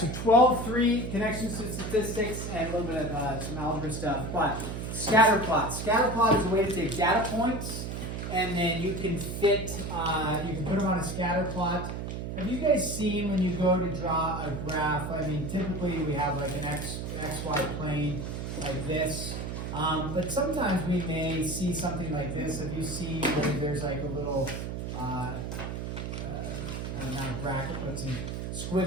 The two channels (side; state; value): right; noise; hum, 5 dB below the sound